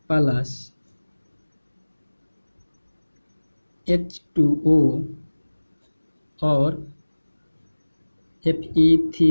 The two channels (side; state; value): both; inverted; correlation -1.00